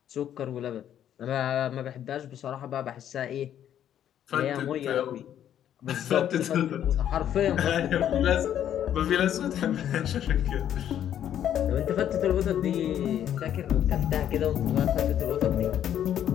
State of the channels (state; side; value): quieter; right; 10.3 dB